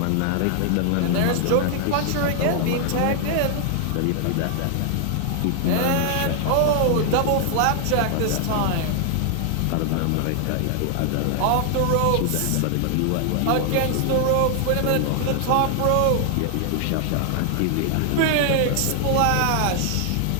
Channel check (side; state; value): both; different; correlation 0.00